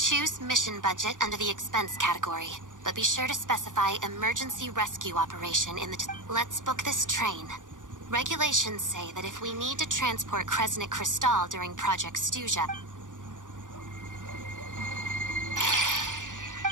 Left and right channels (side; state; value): left; late; 0.87 ms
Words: mission budget under the expense category, but be sure to specify emergency rescue operation in the... Let's book this train. Regulations say that if we need to transport Kresnik Crystal during Project Stuja...